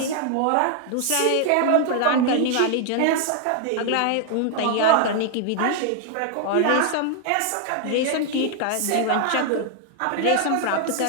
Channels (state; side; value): different; both; correlation 0.00